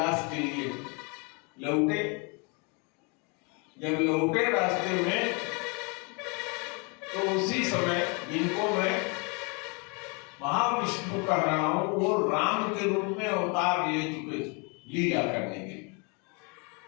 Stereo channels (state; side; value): quieter; right; 32.8 dB